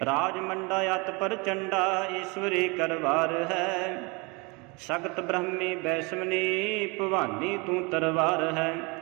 राजमंडा अत पर चंडा ईश्वरी करवार है सगत ब्रह्मी वैष्णवनी भवानी तू तरवार है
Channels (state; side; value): quieter; left; 28.6 dB